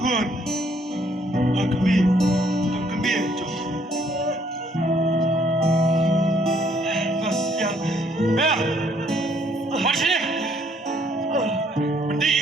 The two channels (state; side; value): normal; both; correlation 0.66